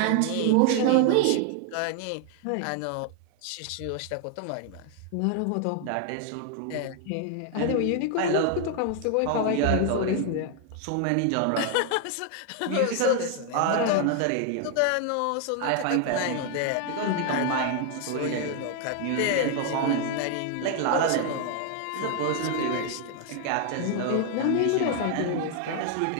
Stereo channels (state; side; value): different; both; correlation 0.00